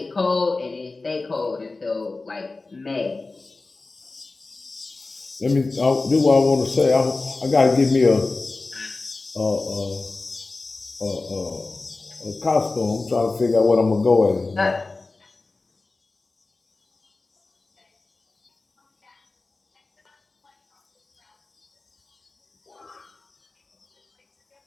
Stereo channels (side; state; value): right; quieter; 3.5 dB